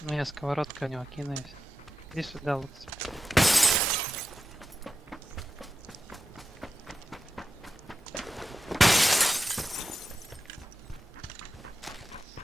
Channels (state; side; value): normal; both; correlation 0.91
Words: Ну я сковородкой у него кину и всё. Иди сюда, лучше.